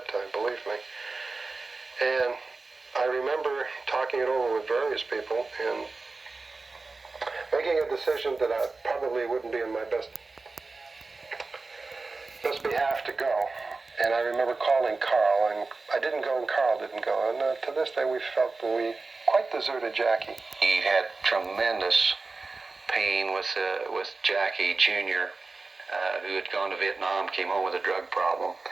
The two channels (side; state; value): left; quieter; 3.8 dB